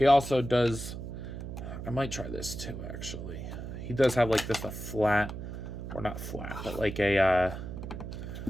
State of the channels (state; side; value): noise; right; hum, 8 dB below the sound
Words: also does, I might try this too, actually. He does have like this, a flat or not flat, but like a